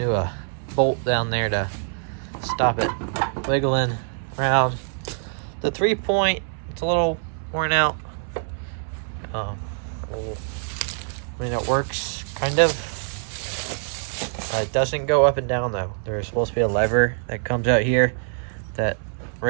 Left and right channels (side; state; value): left; silent; 58 dB below the other